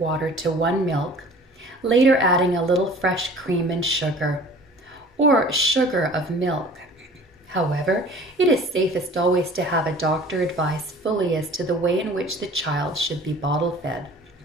to 1 milk, later adding a little fresh cream and sugar, or sugar of milk. However, it is safest always to have a doctor advise fully as to the way in which the child should be bottle fed.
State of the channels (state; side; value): normal; both; correlation 0.47